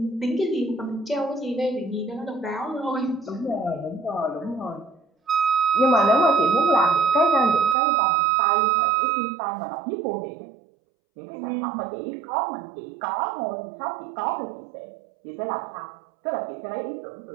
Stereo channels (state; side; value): drops out; left; at 7.8 s